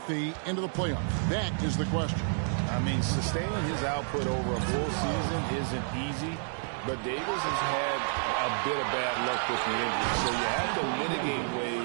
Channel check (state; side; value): silent; left; digital silence